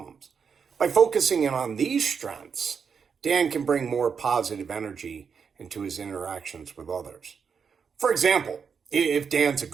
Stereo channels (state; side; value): quieter; left; 6.3 dB